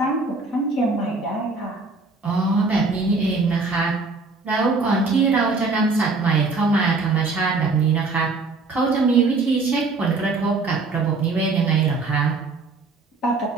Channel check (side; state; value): left; quieter; 3.8 dB